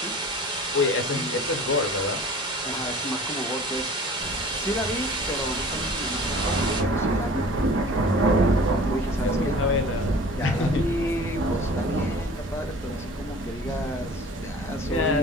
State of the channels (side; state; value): both; normal; correlation 0.44